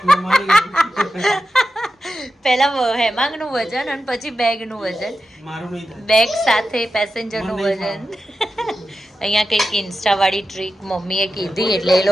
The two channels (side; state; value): both; normal; correlation 0.91